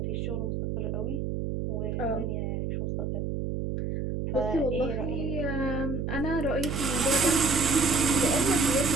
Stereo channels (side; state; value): right; noise; hum, 2 dB below the sound